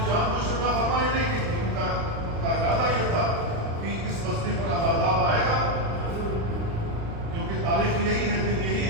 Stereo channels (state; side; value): late; left; 36 ms